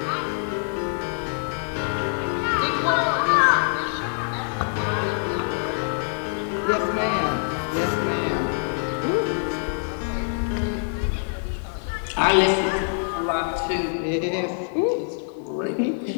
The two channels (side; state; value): right; silent; 62 dB below the other